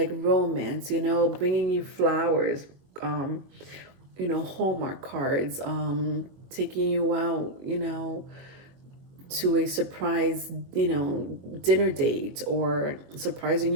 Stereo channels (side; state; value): left; late; 22 ms